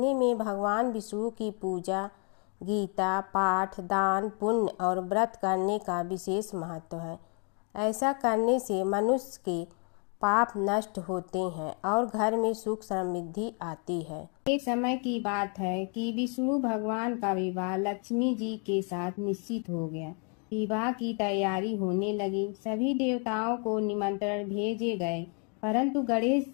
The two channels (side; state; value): right; quieter; 38.7 dB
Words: में भगवान विष्णु की पूजा, गीता पाठ, दान, पुण्य और व्रत करने का विशेष महत्व है। ऐसा करने से मनुष्य के पाप नष्ट होते हैं और घर में सुख समृद्धि आती है। एक समय की बात है कि विष्णु भगवान का विवाह लक्ष्मी जी के साथ निश्चित हो गया। विवाह की तैयारी होने लगी। सभी देवताओं को निमंत्रण भेजे गए, परंतु गणेश